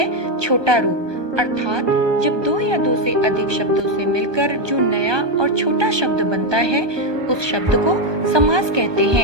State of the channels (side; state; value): left; late; 1.2 ms